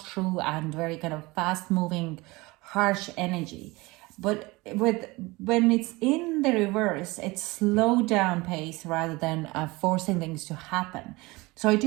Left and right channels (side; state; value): left; quieter; 22.7 dB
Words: through and very kind of fast moving, harsh energy, but when it's in the reverse, it's slow down pace rather than forcing things to happen. So I